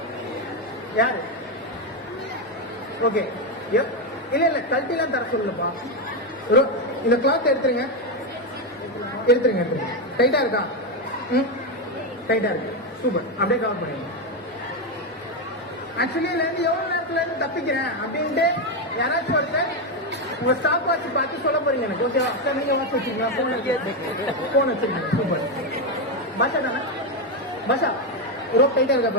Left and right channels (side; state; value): both; normal; correlation 0.08